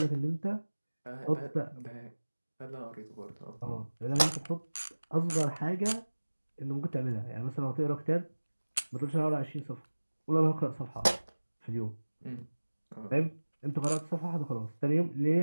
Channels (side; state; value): both; inverted; correlation -1.00